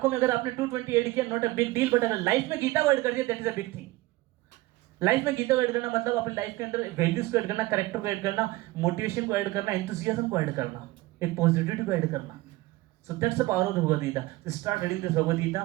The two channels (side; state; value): left; quieter; 19.2 dB